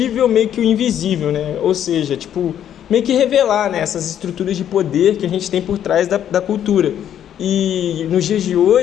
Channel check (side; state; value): right; quieter; 10.1 dB